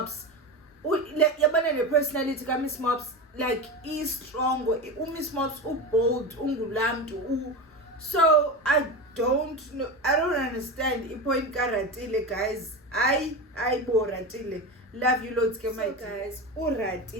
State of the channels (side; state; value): both; normal; correlation 0.23